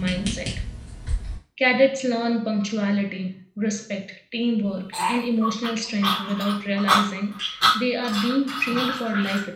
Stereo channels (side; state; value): both; identical; correlation 1.00